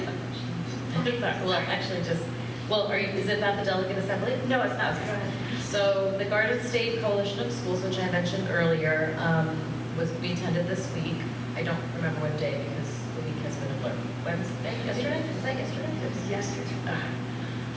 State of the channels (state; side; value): identical; both; correlation 1.00